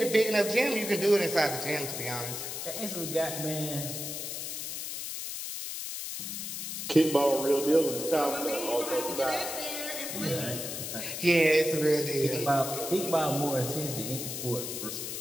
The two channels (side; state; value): left; noise; hiss, 5 dB below the sound